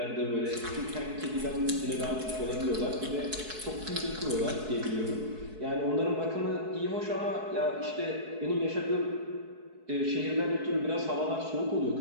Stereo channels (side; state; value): left; late; 4.7 ms